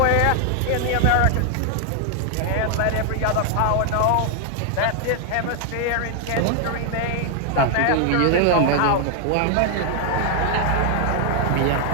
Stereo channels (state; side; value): different; both; correlation 0.00